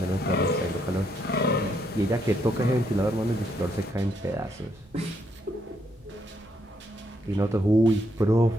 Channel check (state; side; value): normal; both; correlation 0.75